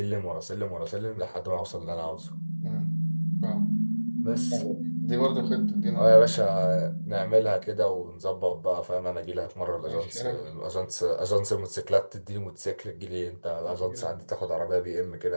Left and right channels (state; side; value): inverted; both; correlation -1.00